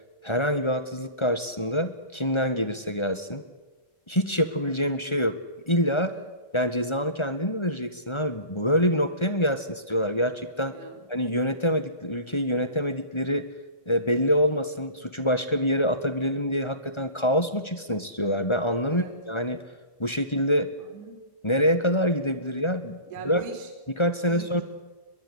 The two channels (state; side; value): late; right; 1.4 ms